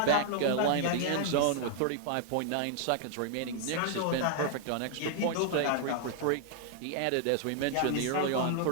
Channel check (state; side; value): different; both; correlation 0.00